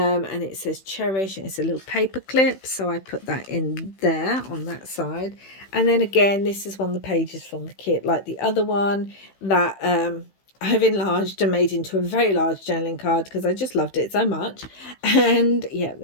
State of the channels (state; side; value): late; right; 16 ms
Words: it says cherish, and it's a little paper clip, so I put that in there on that side. And then again, this is one of the pages from the kit, like the other one that I've enlarged and made into a very large journaling card because I just loved it so much. And yeah,